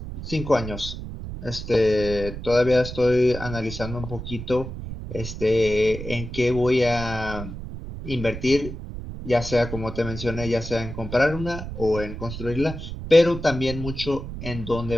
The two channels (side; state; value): right; noise; rumble, 9 dB below the sound